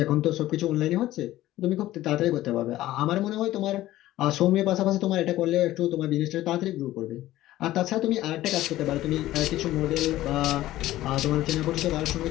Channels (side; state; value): right; quieter; 15.2 dB